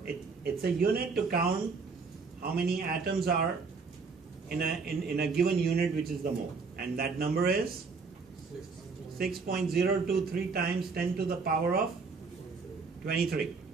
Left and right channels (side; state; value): left; quieter; 4.7 dB